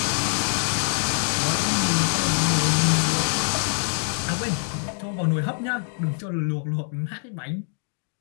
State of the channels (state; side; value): silent; right; digital silence